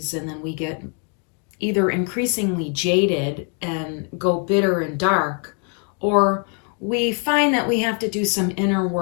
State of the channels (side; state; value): right; quieter; 39.8 dB